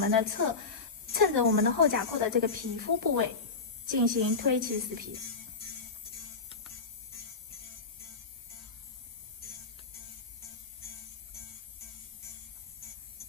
的后甲廓的这个皮肤部位进行推起死皮。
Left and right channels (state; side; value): quieter; right; 4.4 dB